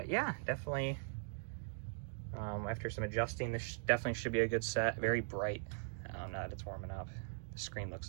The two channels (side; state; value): left; silent; digital silence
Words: yeah, definitely, after some adjusting, this definitely should be a good set. Very bright now that it's warming up. The screen